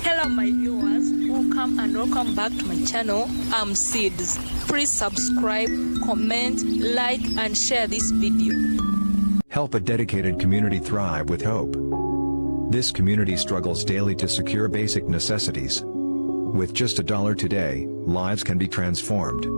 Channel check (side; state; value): both; inverted; correlation -1.00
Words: Hello my viewers, welcome back to my channel. I'm Seeds. Please subscribe, comment, like and share this video. Help a dedicated community thrive with hope. This community struggles daily to secure basic necessities. With just $1 today, lives can be transformed.